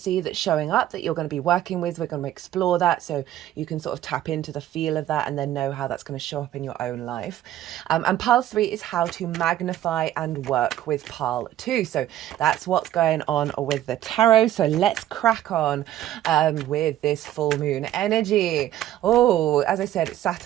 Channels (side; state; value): left; quieter; 12.8 dB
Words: that's showing up that you're going to be working with. We're going to explore that so you can sort of tap into the feel of that and then know how that's going to show up in your own life. And pile 3 is how to magnify and work with pile 2. So that's what's going on with the tarot. So let's crack on with this full moon energy. Oh, as I said, it's